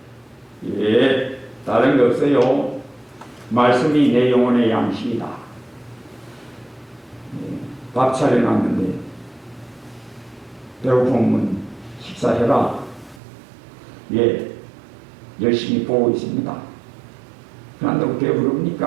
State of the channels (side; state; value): left; drops out; at 13.2 s